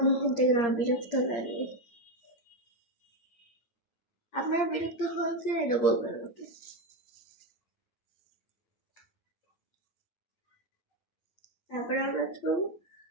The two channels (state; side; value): late; right; 8.6 ms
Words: নিয়ে থেকে আমার বিরক্ত লাগে। আপনারা বিরক্ত হয় কিনা এটা বলবেন আমাকে। তারপরে আমরা কি করবো,